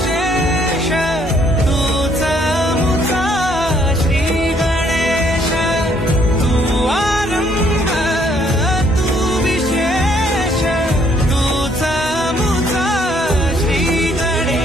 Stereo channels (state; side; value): normal; both; correlation 0.66